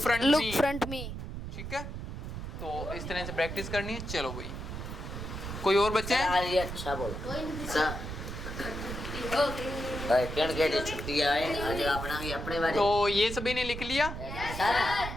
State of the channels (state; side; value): noise; right; rumble, 7 dB below the sound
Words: front look me. front me. ठीक है तो इस तरह से प्रैक्टिस करनी है चलो भाई कोई और बच्चे हैं आज ये अच्छा बोल सर कण के लिए छुट्टी आए आज अपना भी अपने बारे तो ये सभी ने लिख लिया सर